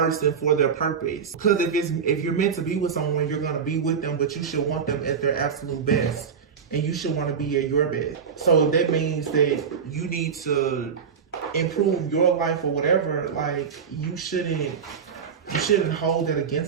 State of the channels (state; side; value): quieter; left; 6.6 dB